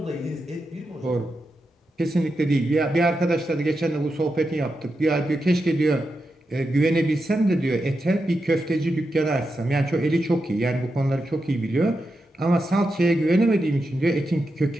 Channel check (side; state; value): both; normal; correlation 0.88